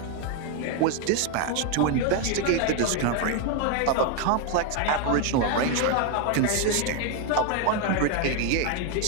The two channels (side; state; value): both; different; correlation 0.01